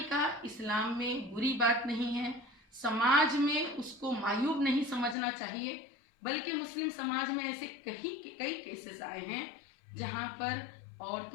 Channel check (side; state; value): right; drops out; at 5.2 s